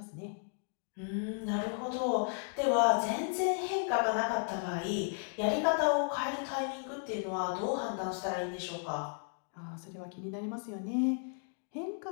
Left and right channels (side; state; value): right; silent; 55 dB below the other